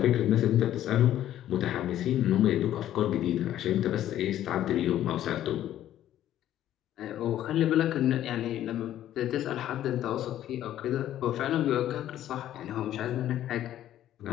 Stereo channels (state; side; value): quieter; right; 12.2 dB